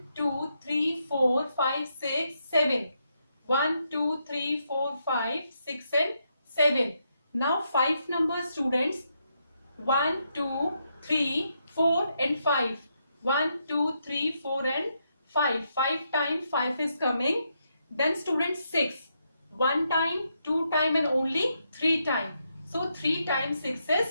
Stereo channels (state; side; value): inverted; both; correlation -0.80